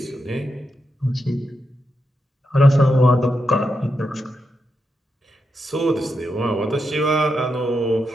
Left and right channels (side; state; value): both; normal; correlation 0.85